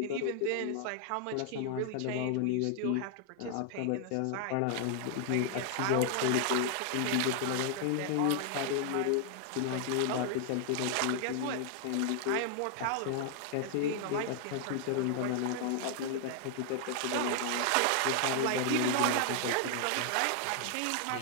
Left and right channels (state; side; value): different; both; correlation 0.00